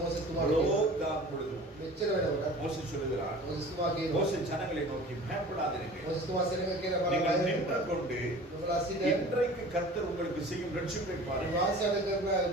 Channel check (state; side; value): normal; both; correlation 0.43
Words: තුමාට அவ்வளோ தான் பொழுதும் මෙච්චර වෙනකොට மோசே சொல்லுகிறார். මෝසෙස් තුමා කියනවා மோசே ஜனங்களை நோக்கி பயப்படாதீர்கள். මෝසෙස් තුමා සෙනඟ කියලා நீங்கள் බලලා நின்று கொண்டு ඔබලා සිට இன்றைக்கு கர்த்தர் உங்களுக்கு செய்யும் ரட்சிப்பை பாருங்கள். වාසයට කරන